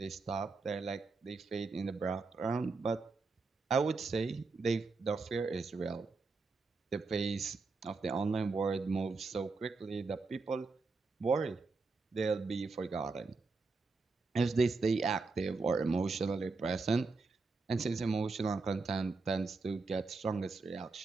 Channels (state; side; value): quieter; left; 4.1 dB